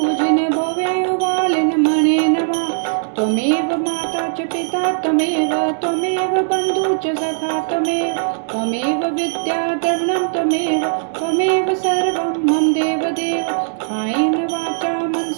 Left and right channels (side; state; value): left; silent; digital silence